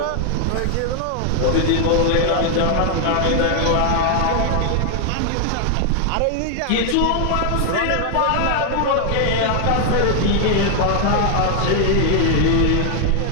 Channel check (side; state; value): both; different; correlation 0.00